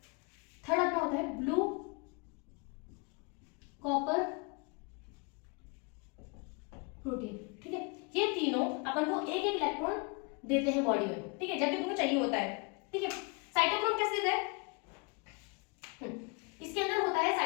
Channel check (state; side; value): quieter; right; 31.5 dB